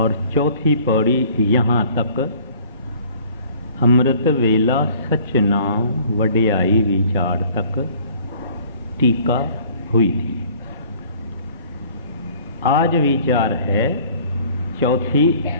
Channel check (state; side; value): inverted; both; correlation -0.53